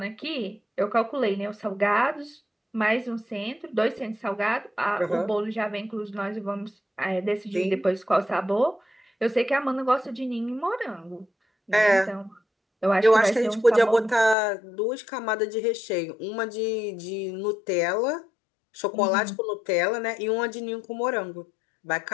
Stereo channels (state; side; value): drops out; right; at 14.4 s